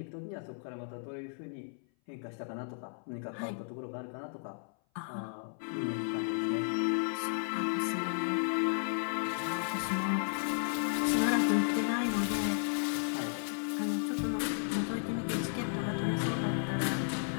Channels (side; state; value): right; silent; 55 dB below the other